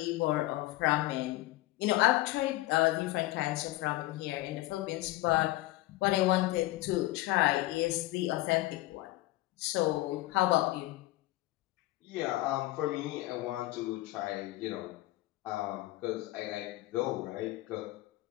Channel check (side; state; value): right; quieter; 17.8 dB